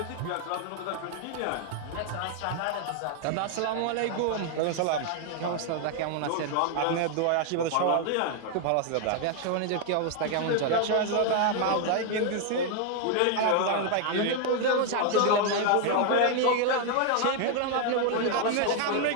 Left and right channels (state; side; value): different; both; correlation 0.00